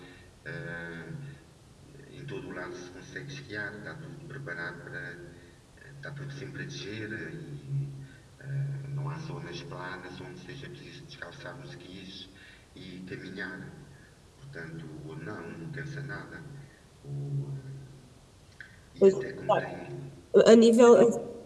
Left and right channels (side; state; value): both; identical; correlation 1.00